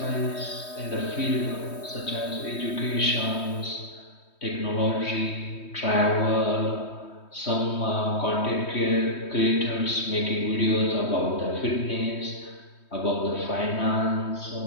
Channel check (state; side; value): late; right; 3.2 ms